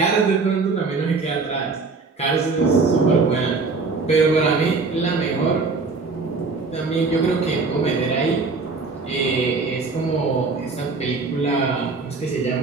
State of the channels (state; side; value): quieter; left; 4.1 dB